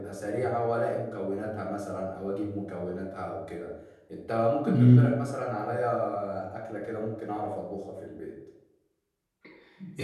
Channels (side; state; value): both; identical; correlation 1.00